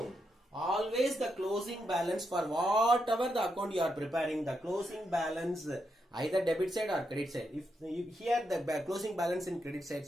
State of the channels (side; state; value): both; normal; correlation 0.82